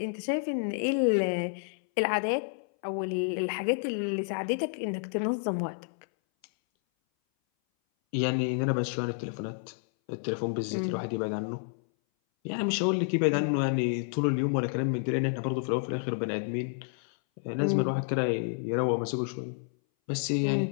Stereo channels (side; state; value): right; silent; 58 dB below the other